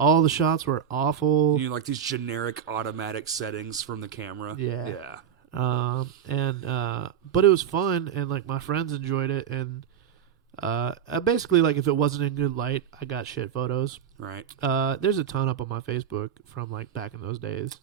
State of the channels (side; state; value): left; quieter; 8.5 dB